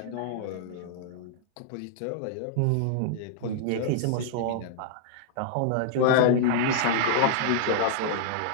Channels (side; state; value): both; different; correlation -0.01